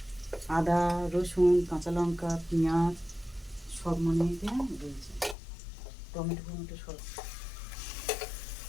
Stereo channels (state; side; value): drops out; right; at 5.4 s